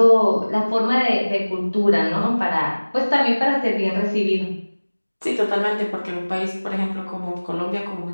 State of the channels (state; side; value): inverted; both; correlation -1.00